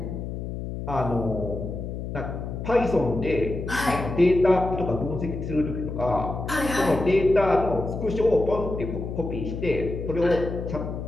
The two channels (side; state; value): left; noise; hum, 6 dB below the sound